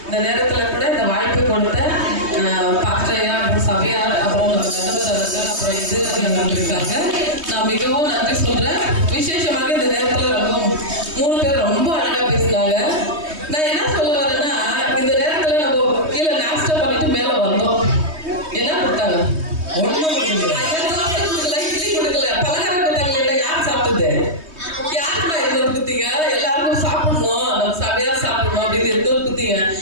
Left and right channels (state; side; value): late; left; 3.2 ms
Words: இந்த நேரத்தில் கூட இந்த வாய்ப்பு கொடுத்த பாஸ்டரையா, சபையார், அப்புறம் நம்ம நடுவர் அவர்கள், அப்புறம் எதிர்ப்பு இருக்காங்க. நான் மிகவும் நன்றி சொல்றேன். விசேஷமாக இந்த நேரத்தில் ரொம்ப 3 பேர் ரொம்ப அழகா பேசினாங்க. நான் என்ன சொல்ல வரேன்னா, இந்த நேரத்தில் நம்ம கீழே நாஸ்டா பண்ணிட்டு மேலே வந்தோம். என்ன கொடுத்தாங்க? கொடுக்கல, பலகாரம் கொடுத்தாங்க. இல்லை, யார் சாப்பிட்டது? யாருமா எதுவும் குத்தீங்க? எல்லாருக்கும் சாப்பிடணும், நம்ம சபையா சாப்பிடணும் அப்படின்னு எதுவும் குத்தீங்க.